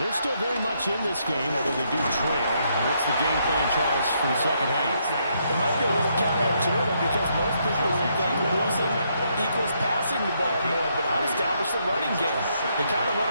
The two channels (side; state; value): both; inverted; correlation -0.75